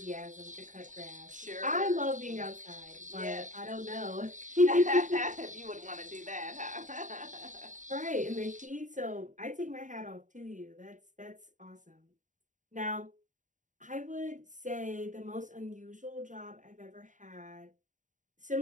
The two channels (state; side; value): late; left; 0.36 ms